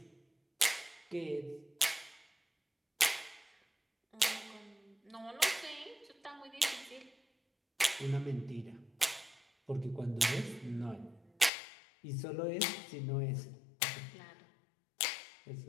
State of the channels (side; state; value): right; drops out; at 11.5 s